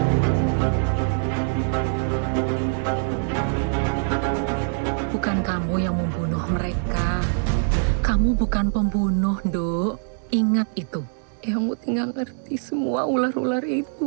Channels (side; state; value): left; silent; digital silence